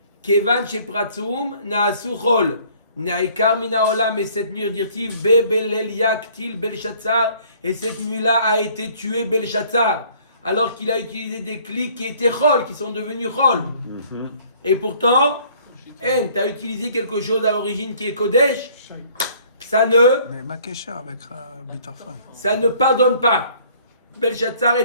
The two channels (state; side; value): inverted; both; correlation -0.57